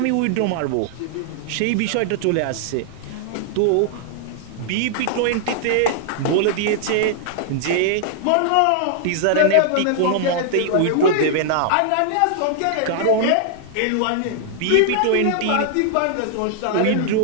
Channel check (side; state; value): both; different; correlation -0.01